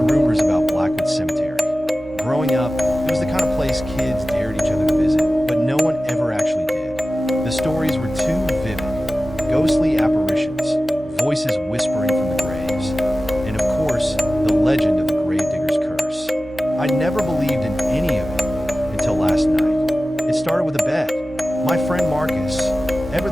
rumors about Blackwood Cemetery. Growing up, it was the kind of place kids dared each other to visit, but no one ever actually did. The stories were too vivid. Ghostly apparitions, voices whispering from the graves, and of course, the legend of the Gravedigger's curse. I never believed in any of it until last night. It started with a bet. My friend Marcus, ever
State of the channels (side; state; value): both; normal; correlation 0.95